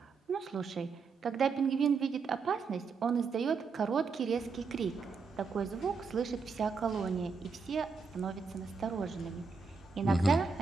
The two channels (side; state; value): left; quieter; 4.9 dB